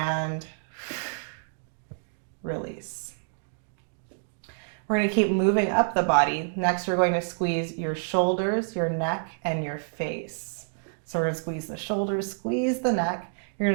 release. We're going to keep moving up the body. Next, we're going to squeeze your shoulders, your neck, and your face. So we're going to squeeze the shoulders, squeeze the neck. You're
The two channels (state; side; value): silent; left; digital silence